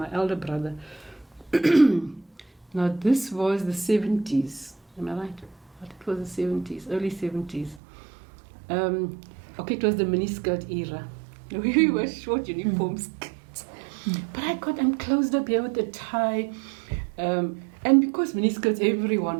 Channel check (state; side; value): drops out; left; at 7.8 s